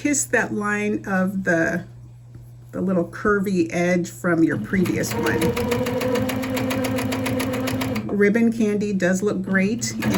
that line of the little curvy edge from your previous one. Ribbon candy does look great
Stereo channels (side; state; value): both; identical; correlation 1.00